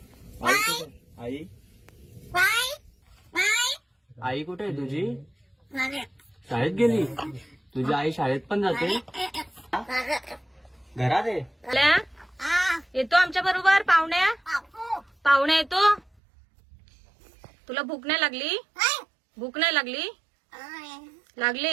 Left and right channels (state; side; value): drops out; left; at 16.1 s